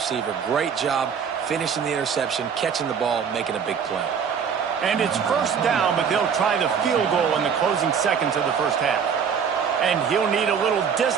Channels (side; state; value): left; quieter; 7.0 dB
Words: Great job finishing the interception, catching the ball, making a big play. And it's first down, but they'll try the field goal in the closing seconds of the first half. And he'll need a little